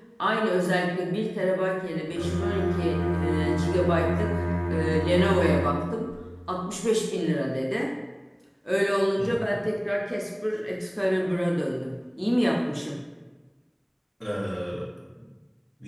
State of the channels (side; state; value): both; identical; correlation 1.00